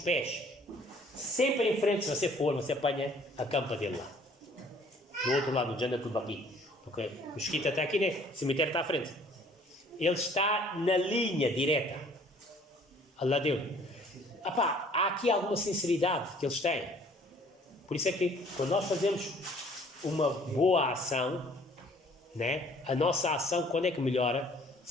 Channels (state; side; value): normal; both; correlation 0.56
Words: sempre em frente, se você for, você apanha a campa dele lá. Do outro lado, do Jannatul Baqi. Porque o mesquita está aqui, né? O cemitério está à frente. Ele está na linha direta. Allah deu. Há aqui alguma sinceridade que eles têm. Por isso é que quando nós fazemos uma boa ação, né, a nossa ação, quando é que melhora?